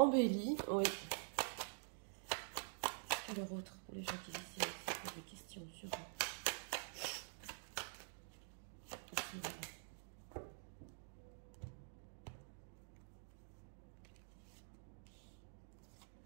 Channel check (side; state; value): left; silent; digital silence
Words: Oui. Alors autre pour les gens qui ici avec des questions sur ici, voilà.